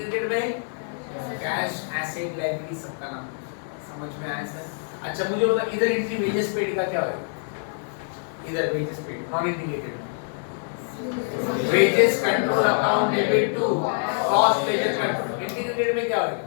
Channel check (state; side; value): silent; right; 61 dB below the other